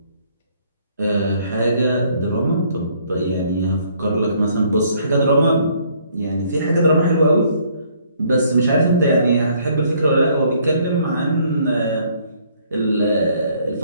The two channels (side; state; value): both; inverted; correlation -0.64